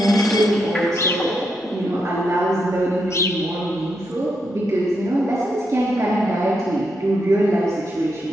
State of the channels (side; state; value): both; normal; correlation 0.82